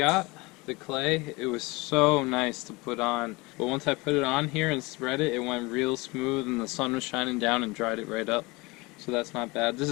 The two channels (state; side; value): quieter; right; 24.2 dB